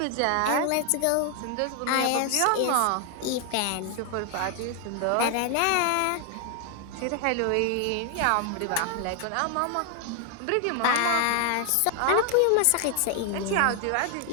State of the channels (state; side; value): different; both; correlation 0.00